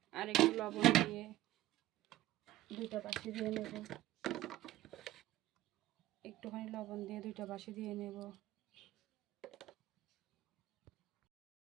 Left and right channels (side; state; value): left; quieter; 15.2 dB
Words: আর একটু লবণ দিয়ে দুইটা বাসি দিয়ে নেব। একটুখানি লবণ দিয়ে দুইটা বাসি দিয়ে নেব।